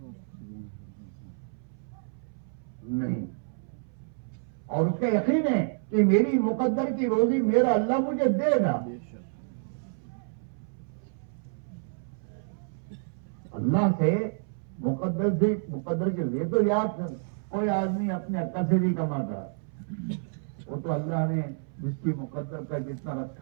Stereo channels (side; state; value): left; silent; 58 dB below the other